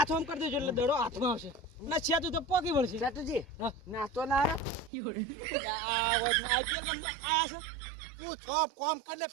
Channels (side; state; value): left; drops out; at 4.9 s